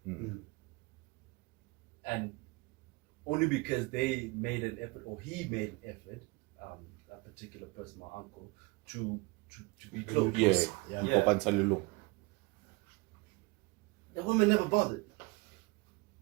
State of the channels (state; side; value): quieter; left; 25.6 dB